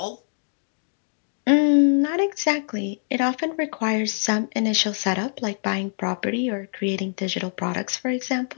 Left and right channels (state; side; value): silent; right; 62 dB below the other